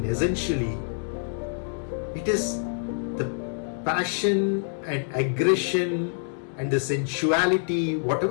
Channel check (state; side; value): silent; right; digital silence